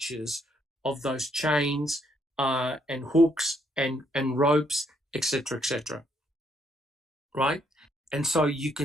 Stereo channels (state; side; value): normal; both; correlation 0.72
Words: of those chains and hooks and ropes, etc., etc., right? And so you